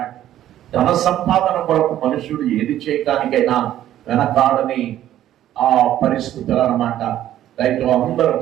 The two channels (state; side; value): quieter; left; 12.4 dB